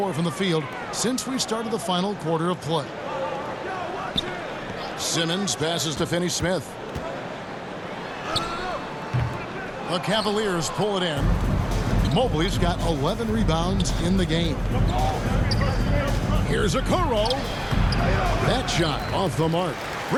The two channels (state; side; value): identical; both; correlation 1.00